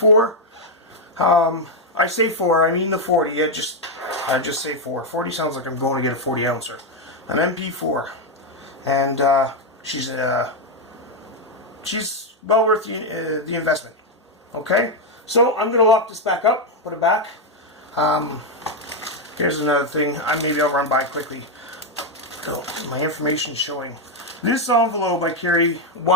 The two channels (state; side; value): normal; both; correlation 0.03